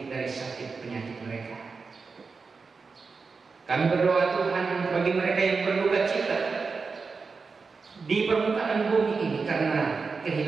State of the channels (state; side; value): quieter; left; 4.7 dB